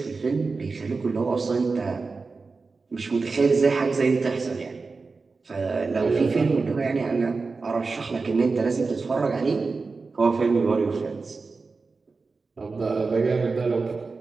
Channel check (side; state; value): left; quieter; 4.2 dB